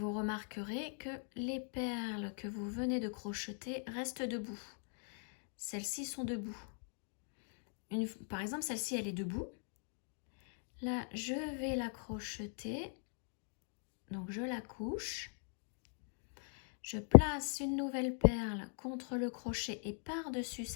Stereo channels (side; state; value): right; silent; 51 dB below the other